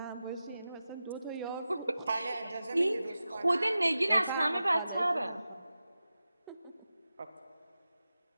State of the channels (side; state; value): both; inverted; correlation -0.93